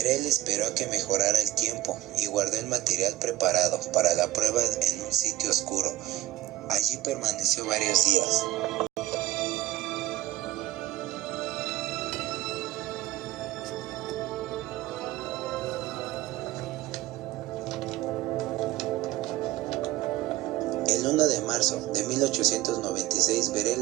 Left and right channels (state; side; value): quieter; left; 15.4 dB